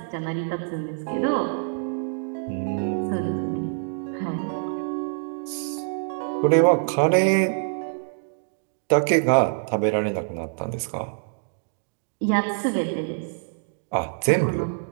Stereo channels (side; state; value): left; silent; 61 dB below the other